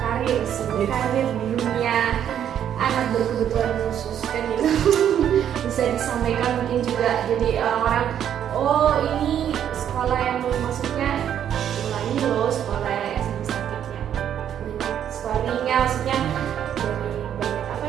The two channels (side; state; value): left; quieter; 9.7 dB